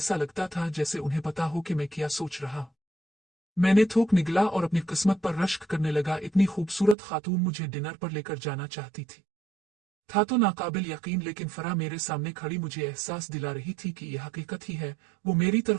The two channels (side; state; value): left; drops out; at 7.0 s